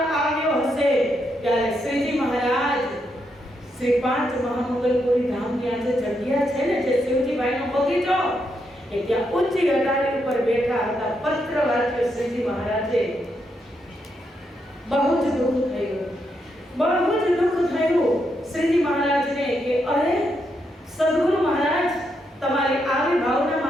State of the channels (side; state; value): both; normal; correlation 0.80